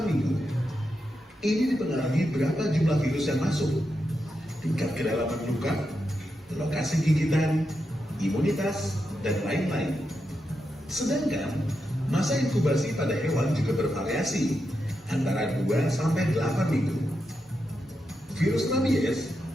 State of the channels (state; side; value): normal; both; correlation 0.86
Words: minggu. Ini dipengaruhi berapa jumlah virus yang masuk, tingkat kedalaman luka, lokasi gigitan, imunitas, dan lain-lain. Sedangkan masa inkubasi pada hewan juga bervariasi antara 2 sampai 8 minggu. Virus rabies